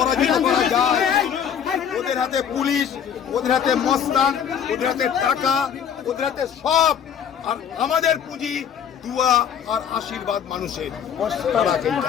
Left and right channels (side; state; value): right; quieter; 8.3 dB